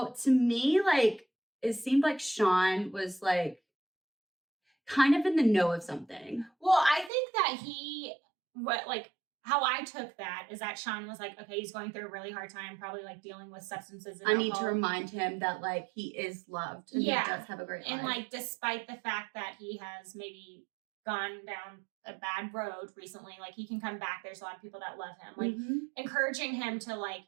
to me, like, it seemed like Sean was like kind of in the know of something. Well, I think that how I took that is that Sean was like, okay, he's going through a really hard time, probably like dealing with substances and I need to alcohol. remind him that like he is loved and Yeah. he does have a great life. And like, despite the fact that he has maybe gone down a bad road recently, like he can come back. There's a lot of people that love him. Like encouraging him to like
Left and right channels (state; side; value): drops out; left; at 7.1 s